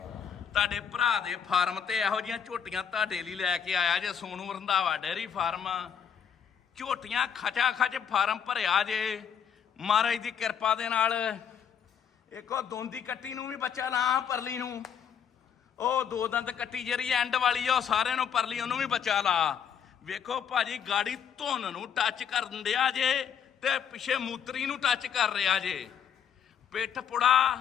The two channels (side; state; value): right; quieter; 7.9 dB